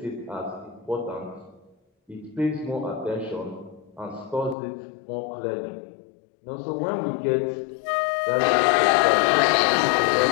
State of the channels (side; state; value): right; drops out; at 4.5 s